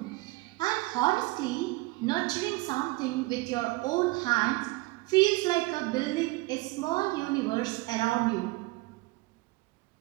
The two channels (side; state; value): left; quieter; 22.2 dB